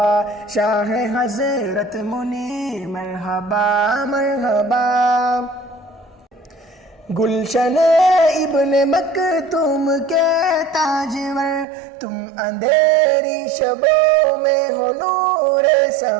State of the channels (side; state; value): left; drops out; at 11.7 s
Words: شاہ حضرت منیر مرحبا مرحبا گلشن ابن مکتوم کے تاجور، تم اندھیری شبوں میں ہو نور